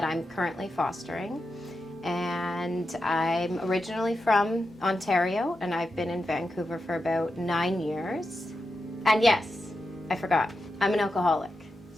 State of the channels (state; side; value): normal; both; correlation 0.89